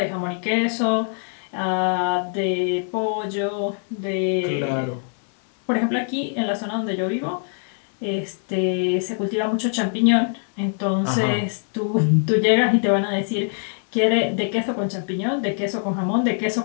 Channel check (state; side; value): silent; right; digital silence